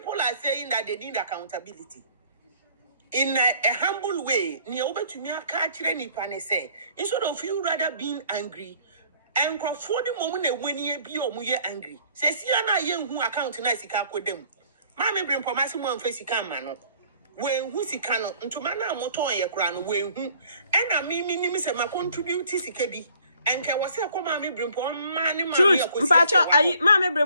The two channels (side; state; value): both; inverted; correlation -0.57